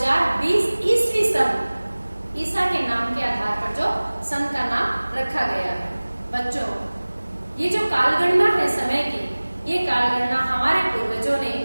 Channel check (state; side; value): inverted; both; correlation -1.00